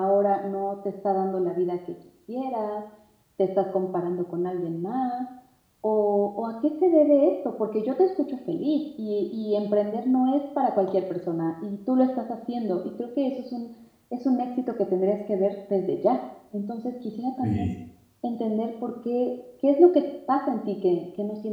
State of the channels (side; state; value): both; identical; correlation 1.00